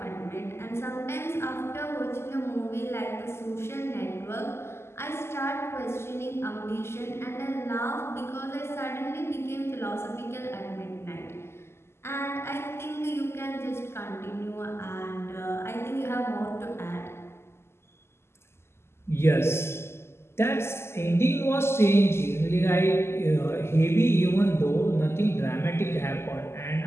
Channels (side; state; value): right; late; 0.12 ms